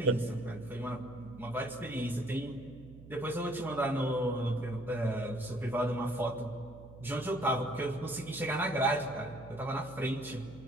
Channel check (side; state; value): right; noise; hum, 17 dB below the sound